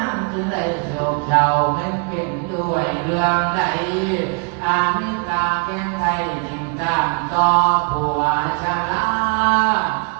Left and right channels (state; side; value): quieter; left; 35.9 dB